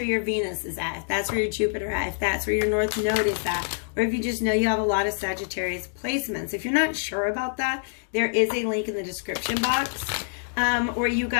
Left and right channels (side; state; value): right; silent; digital silence